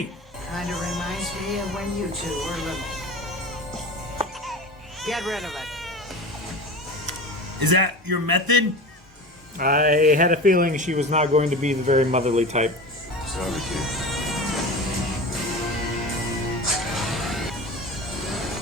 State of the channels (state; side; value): normal; both; correlation 0.31